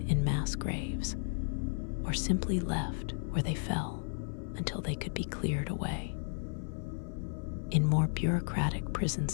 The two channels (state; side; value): silent; right; 55 dB below the other